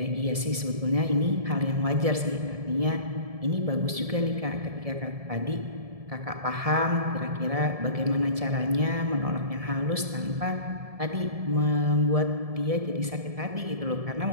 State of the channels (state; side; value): late; left; 1.7 ms